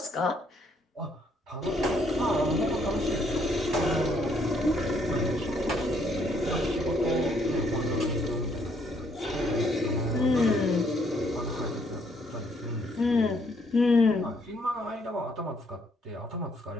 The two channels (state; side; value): normal; both; correlation 0.69